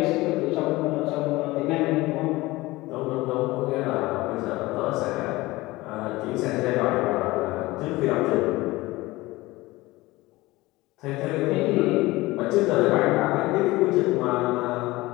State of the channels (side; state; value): right; quieter; 20.0 dB